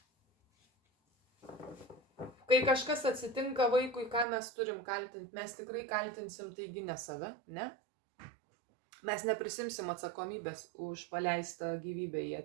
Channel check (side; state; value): left; drops out; at 4.2 s